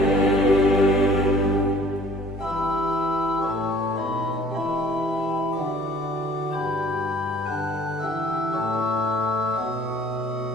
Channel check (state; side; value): normal; both; correlation 0.54